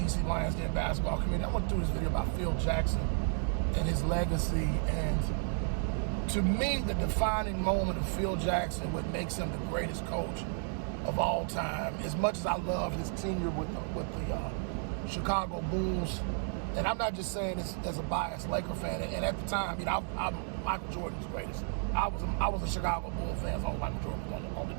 Lions Den basketball community. I want to do this video about Phil Jackson and his legacy. And to me, the defining moment of Phil Jackson, what makes him the greatest coach of all time, as much as I love his tenure with the Chicago Bulls, and I'm not just saying this as a biased Laker fan. And at the time, I'm Michael Jordan's greatest. I was a Chicago Bulls fan, so Michael Jordan was on the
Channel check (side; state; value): left; silent; 56 dB below the other